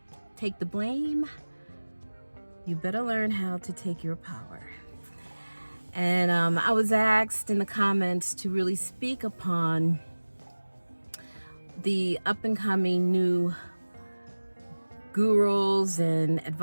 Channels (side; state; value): both; inverted; correlation -1.00